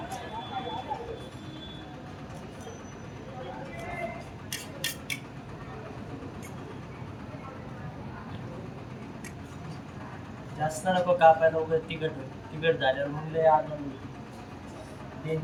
जास्त नको कापायला, उगाच तिखट झाल्यावर मग लय आनंद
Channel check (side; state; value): both; identical; correlation 1.00